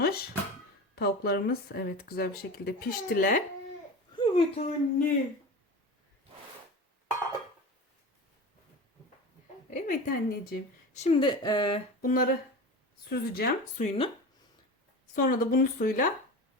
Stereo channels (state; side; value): normal; both; correlation 0.30